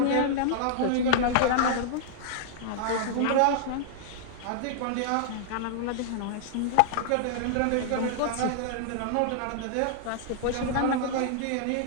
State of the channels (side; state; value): both; different; correlation -0.01